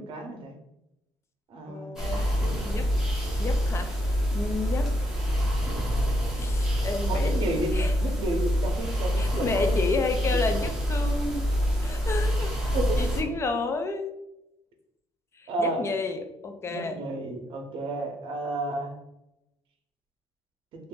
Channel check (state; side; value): normal; both; correlation 0.78